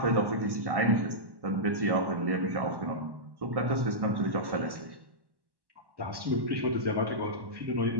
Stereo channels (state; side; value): late; left; 1.1 ms